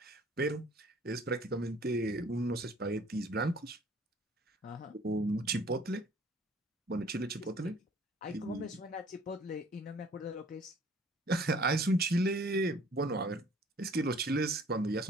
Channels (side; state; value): both; normal; correlation 0.54